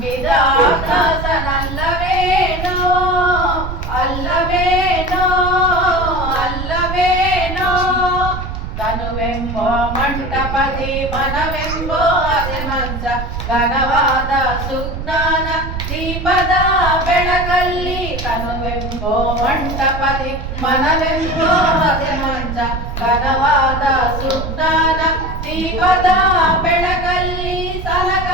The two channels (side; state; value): right; noise; rumble, 6 dB below the sound